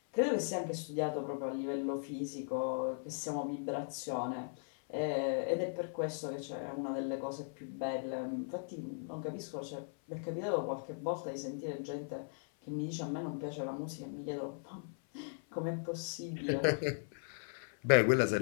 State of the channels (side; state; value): right; silent; 52 dB below the other